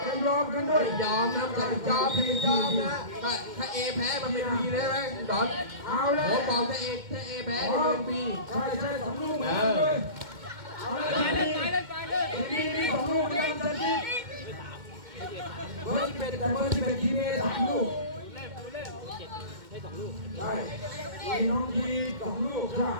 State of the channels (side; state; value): left; late; 2.1 ms